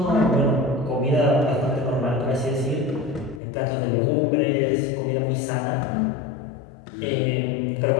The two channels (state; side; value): drops out; right; at 3.4 s